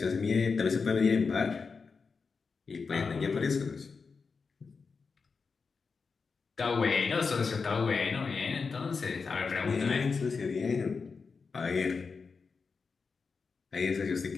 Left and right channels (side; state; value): right; quieter; 5.0 dB